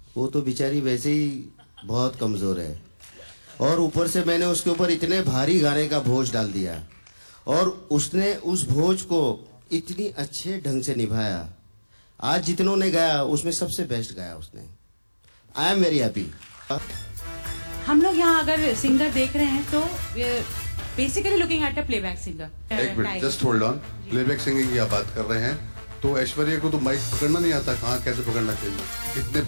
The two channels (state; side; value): inverted; both; correlation -1.00